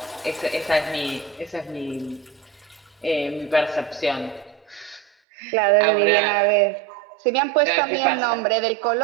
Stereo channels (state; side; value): drops out; left; at 5.1 s